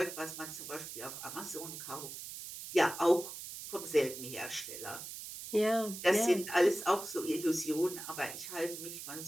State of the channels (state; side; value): noise; right; hiss, 9 dB below the sound